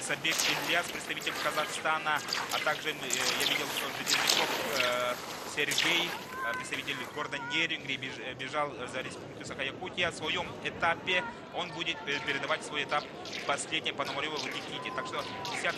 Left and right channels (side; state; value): both; identical; correlation 1.00